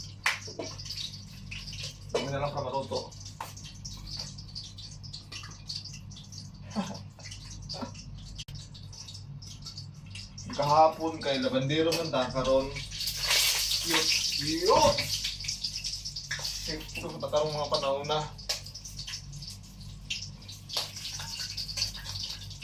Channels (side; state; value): both; identical; correlation 1.00